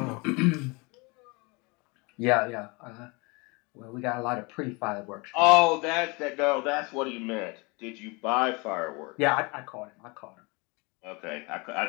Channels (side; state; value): right; quieter; 28.2 dB